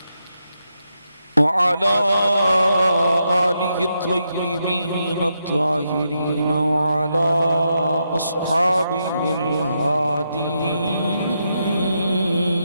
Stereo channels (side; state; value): both; inverted; correlation -0.83